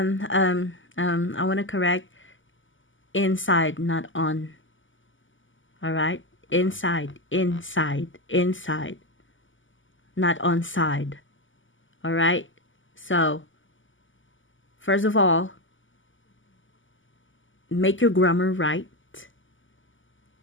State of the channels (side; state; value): right; late; 0.57 ms